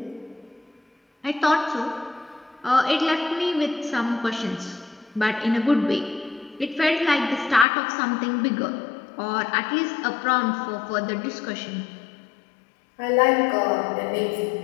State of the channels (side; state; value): right; drops out; at 7.7 s